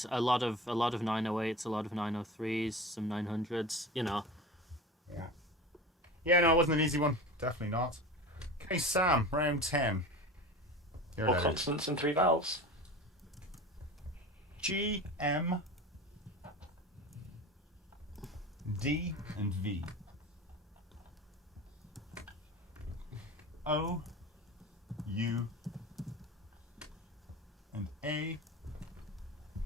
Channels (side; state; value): both; normal; correlation 0.32